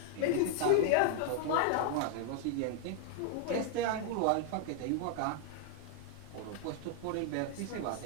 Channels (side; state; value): both; different; correlation 0.00